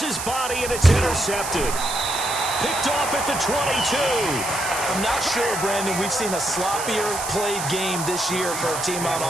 body, and it's intercepted. Picked off at the 22. I'm not sure, Brandon, we've seen a sloppier played game this year for a team on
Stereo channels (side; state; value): right; noise; hiss, 6 dB below the sound